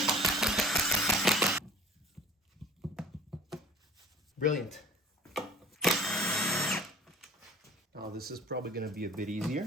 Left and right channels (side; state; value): both; normal; correlation 0.46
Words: Brilliant. Now this is probably going to be a bit